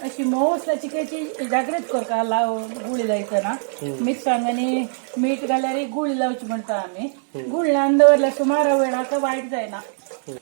अशी मोव असल्या चिकयची जागृत करता लाव गुळी लायतना मिरसांग आनी मीठ घाल्यार गुळी लावची म्हणटा आमी गुळ लावन दवरल्यार सुमार वेळाक वायट जायना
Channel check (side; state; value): left; silent; digital silence